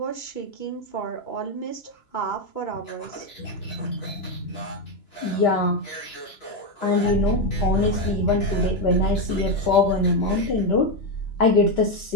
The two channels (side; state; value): right; late; 2.9 ms